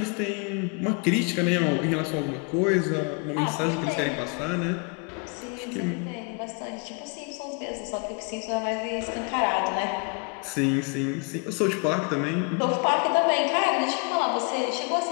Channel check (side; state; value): right; quieter; 34.8 dB